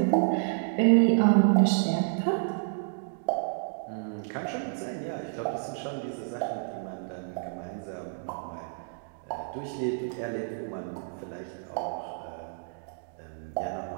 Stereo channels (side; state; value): left; silent; digital silence